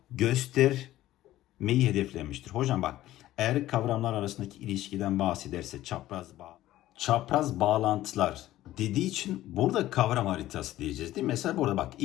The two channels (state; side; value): quieter; right; 14.8 dB